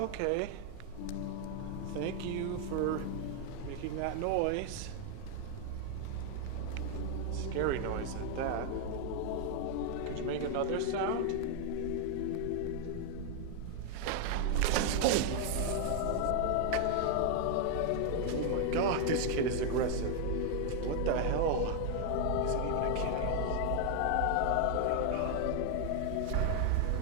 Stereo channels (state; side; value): different; both; correlation 0.00